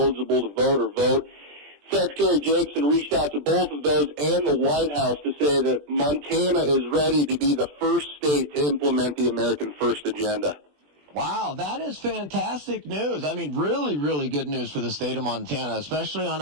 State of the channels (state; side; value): late; left; 20 ms